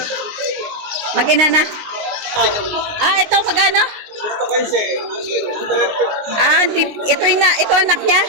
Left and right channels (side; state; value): left; late; 19 ms